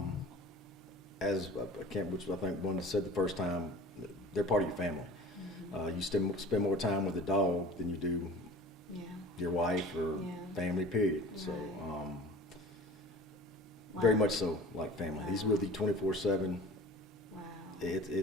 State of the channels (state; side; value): normal; both; correlation 0.41